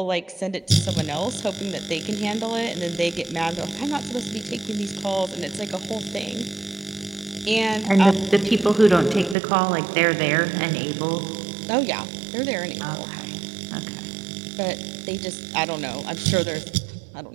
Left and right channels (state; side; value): drops out; left; at 9.3 s